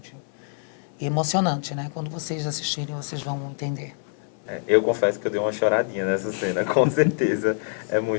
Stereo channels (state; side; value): silent; right; 62 dB below the other